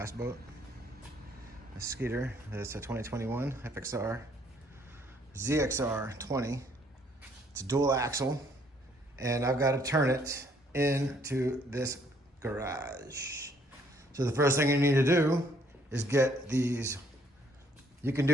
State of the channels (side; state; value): both; normal; correlation 0.65